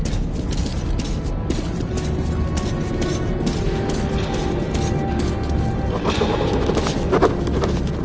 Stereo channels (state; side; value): identical; both; correlation 1.00